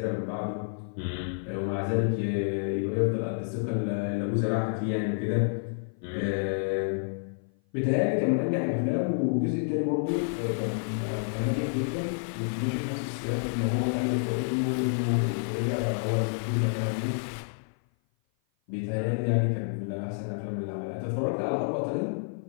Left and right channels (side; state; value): right; silent; 55 dB below the other